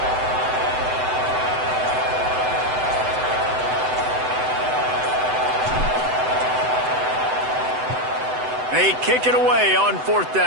They kick it away on 4th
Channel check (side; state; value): left; late; 7.9 ms